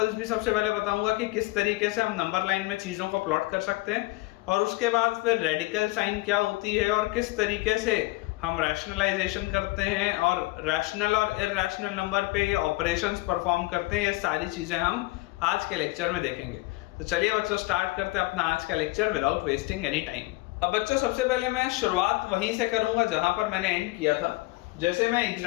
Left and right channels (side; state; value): right; quieter; 22.0 dB